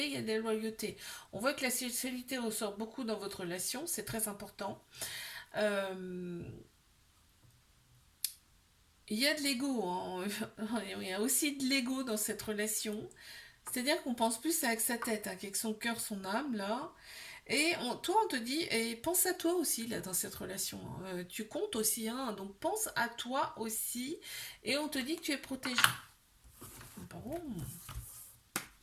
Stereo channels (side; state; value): both; identical; correlation 1.00